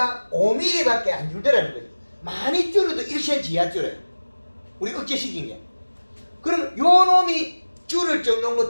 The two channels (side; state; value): both; inverted; correlation -1.00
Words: 5mm밖에 안 줄더라는 거예요. 많이 줄여도 1cm 이하 줄여요. 우리 억제시킨 게. 그럼 요 놈이 줄을 정도인